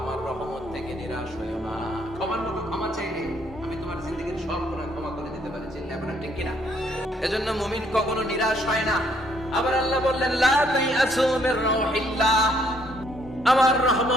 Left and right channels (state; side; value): normal; both; correlation 0.67